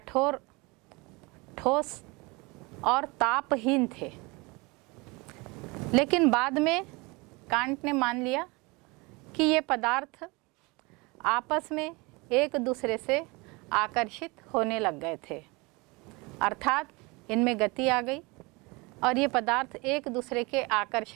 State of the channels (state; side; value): quieter; left; 26.1 dB